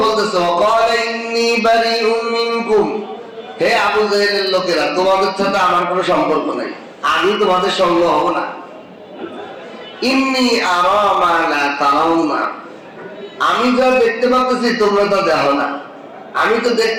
বলতেছে ওয়াকালা ইন্নী বারিউম মিনকুম, হে আবু জাহেলের লোকেরা, তোমাদের সাথে আমার কোনো সম্পর্ক নাই, আমি তোমাদের সঙ্গ হব না। ইন্নী আরা মা লা তারাউনা, আমি যা দেখতে পাচ্ছি তোমরা তা দেখো না। আমি তো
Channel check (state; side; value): identical; both; correlation 1.00